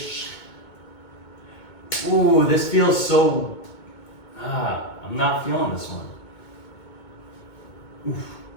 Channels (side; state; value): right; late; 2.2 ms